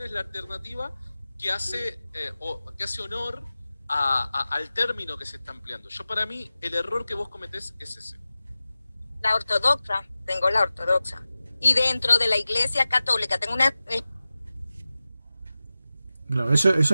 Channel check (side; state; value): both; inverted; correlation -0.96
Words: es la alternativa que hace honor al término que se está empleando? Yo, para mí, el error que vos cometés es ese. La ortodoxa, tengo la ortodoxa. Y dentro de la Iglesia Católica tengo una... Claro, eso es